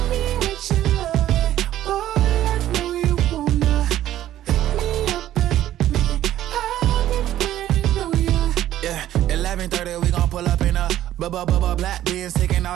Black beans taking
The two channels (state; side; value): quieter; left; 12.8 dB